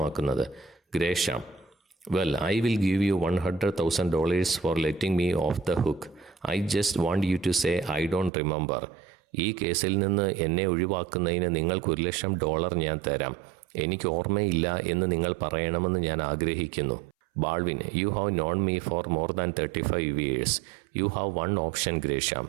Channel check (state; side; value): drops out; left; at 8.3 s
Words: Gresham: well, I will give you $100,000 for letting me off the hook. I just want you to say I don't remember. ഈ കേസിൽ നിന്ന് എന്നെ ഒഴിവാക്കുന്നതിന് നിങ്ങൾക്ക് $1,00,000 ഞാൻ തരാം. എനിക്ക് ഓർമ്മയില്ല എന്ന് നിങ്ങൾ പറയണമെന്ന് ഞാൻ ആഗ്രഹിക്കുന്നു. Baldwin: you have known me for more than 35 years. You have one option Gresham.